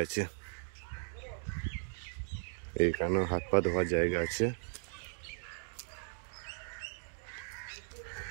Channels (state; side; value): silent; left; digital silence